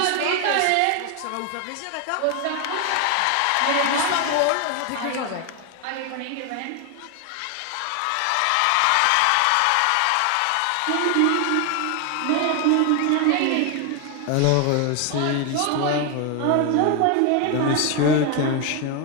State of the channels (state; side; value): different; both; correlation 0.01